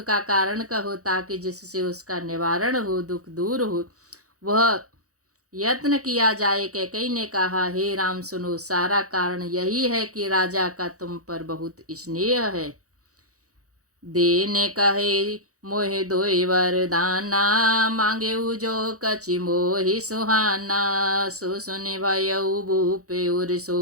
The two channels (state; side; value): late; left; 0.66 ms